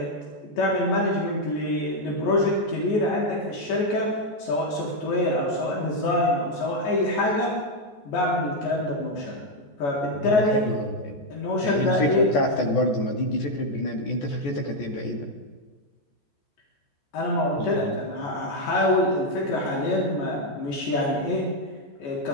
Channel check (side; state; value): right; late; 14 ms